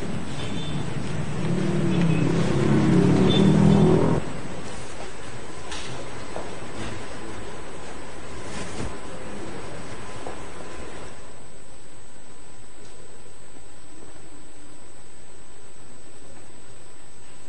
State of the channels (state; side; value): identical; both; correlation 1.00